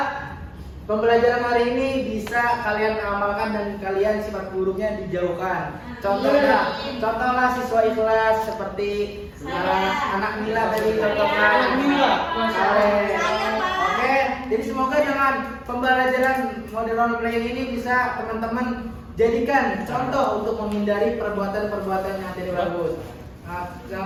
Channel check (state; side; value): identical; both; correlation 1.00